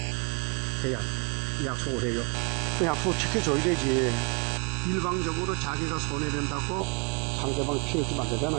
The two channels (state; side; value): quieter; left; 33.8 dB